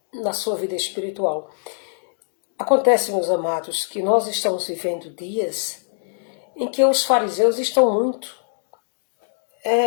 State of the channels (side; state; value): right; silent; digital silence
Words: na sua vida espiritual. Acontece, meus amados, que nós estamos vivendo dias em que os fariseus estão muito